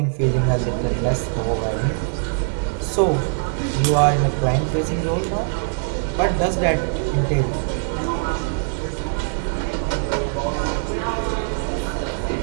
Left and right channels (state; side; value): silent; left; 58 dB below the other